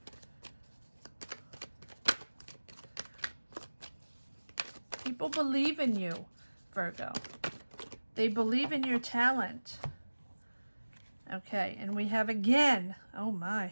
People believe in you, Virgo. They believe in your talent. Okay, and we have again, oh my.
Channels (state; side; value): inverted; both; correlation -1.00